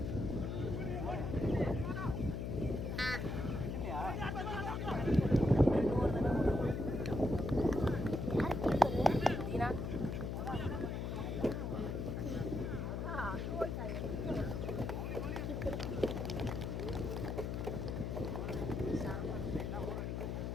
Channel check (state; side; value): noise; left; hum, 2 dB below the sound